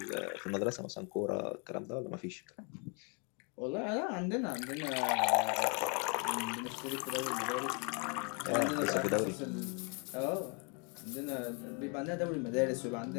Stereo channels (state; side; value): quieter; right; 35.4 dB